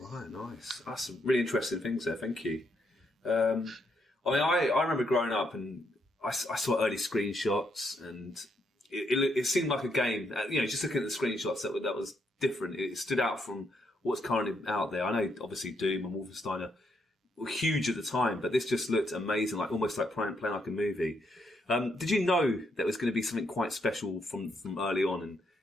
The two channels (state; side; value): normal; both; correlation 0.76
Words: nice. That's some really interesting things there. Thank you. I remember growing up and I saw early screenshots, and it seemed like a game. Just looking at the screenshots, that was different. It stood out from what's currently out there. I know, obviously, Doom and Wolfenstein were huge at the time, but this just looked amazing, almost like playing like a movie. Did you know that was going to be something quite special from early on? And